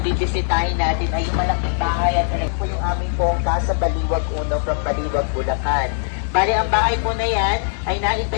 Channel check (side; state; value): right; silent; digital silence